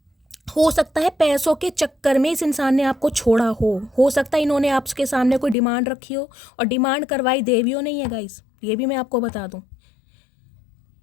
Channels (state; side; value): drops out; right; at 5.6 s